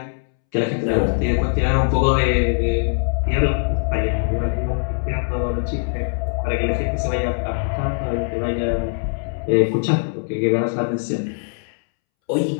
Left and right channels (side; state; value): right; silent; 65 dB below the other